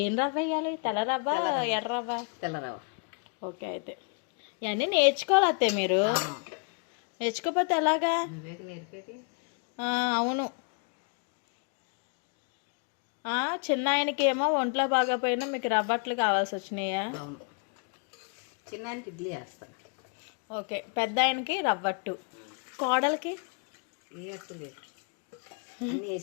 ఏం రవ్వ వేయాలి? తెల్ల రవ్వ, ఎర్ర రవ్వ? తెల్ల రవ్వ. ఓకే. అయితే ఇవన్నీ నేర్చుకోవాలి అత్తే మీరు. నేర్చుకోకపోతే ఎలాగా? నేర్పేది. అవును. చిన్న ఆయనకి ఏమో ఒంట్లో బాగోపోయినా మీకు రవ్వట్లు కావాల్సి వచ్చినాయా? అవును. చిన్న ఆయనకి ఇడ్లీ వేస్తాను. ఓకే. పెద్ద ఆయనకి రవ్వట్టు, కోడలికి ఏ అట్టు లేదు. అన్నీ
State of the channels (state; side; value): quieter; right; 39.9 dB